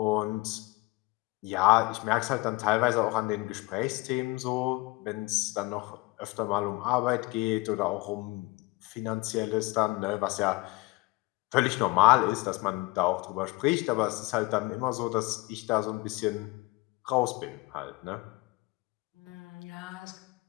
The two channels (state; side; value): quieter; right; 23.0 dB